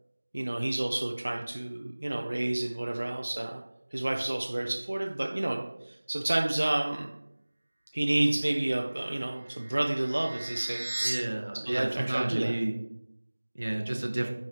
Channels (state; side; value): inverted; both; correlation -1.00